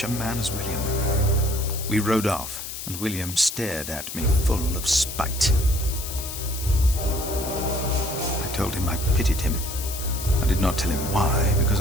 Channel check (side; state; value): left; noise; hiss, 8 dB below the sound